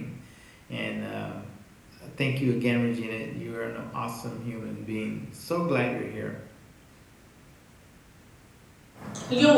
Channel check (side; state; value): both; identical; correlation 1.00